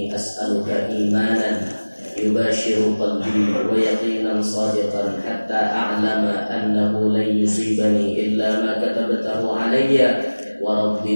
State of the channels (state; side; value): inverted; both; correlation -1.00